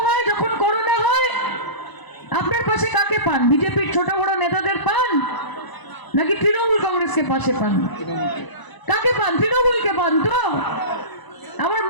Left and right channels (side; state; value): right; late; 1.0 ms